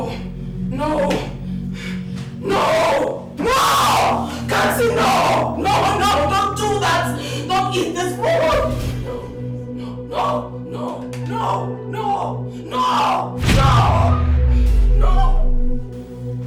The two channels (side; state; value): both; identical; correlation 1.00